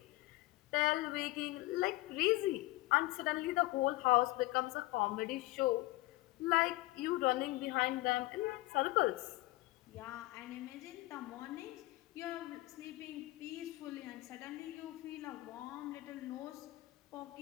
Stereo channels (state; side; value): quieter; right; 19.4 dB